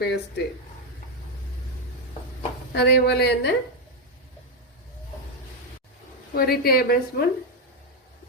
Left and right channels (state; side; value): normal; both; correlation 0.04